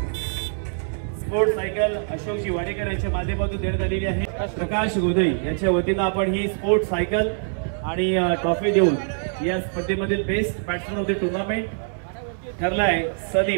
Sport cycle अशोकजी वाडेकर यांच्या माध्यमातून देण्यात आलेली आहे. प्रकाश गोदई यांच्या वतीनं आपण ही स्पोर्ट सायकल आणि ट्रॉफी देऊन या स्पर्धेमधील best batsman of the tournament ठरलाय सनी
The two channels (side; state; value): left; silent; digital silence